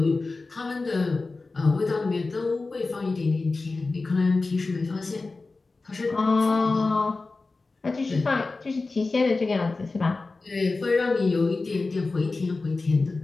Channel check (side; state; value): right; quieter; 3.7 dB